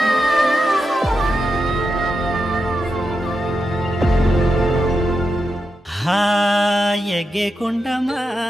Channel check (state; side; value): normal; both; correlation 0.87